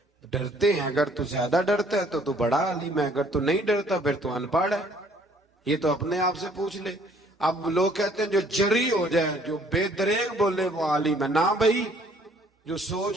ڈرتے ہیں۔ اگر تو زیادہ ڈرتا ہے تو بڑا عالم ہے، اگر تو نہیں ڈرتا پھر تو ان پڑھ ہے۔ یہ تو اپنے آپ سے پوچھ لے۔ اب لوگ کہتے ہیں جو جری ہو جائے، جو بے دریغ بولے وہ عالم ہے۔ نہ بھائی، جو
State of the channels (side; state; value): both; normal; correlation 0.60